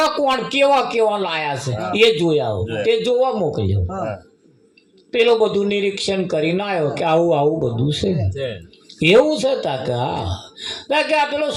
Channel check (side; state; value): both; identical; correlation 1.00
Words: કોણ કેવા લાયા છે એ જોઈ આવો. તે જોવા મોકલ્યો. પેલો બધું નિરીક્ષણ કરીને આવ્યો કે આવું બધું છે. એવું છે તા કે હા કે આ પેલો